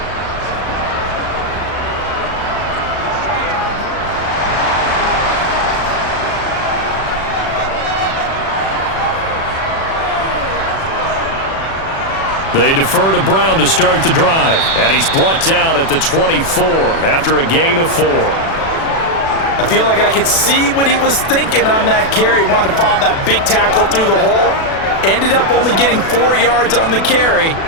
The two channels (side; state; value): right; late; 36 ms